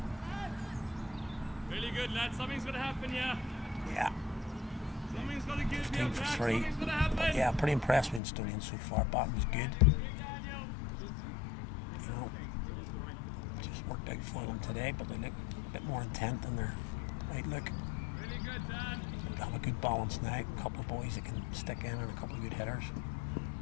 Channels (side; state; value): right; drops out; at 8.2 s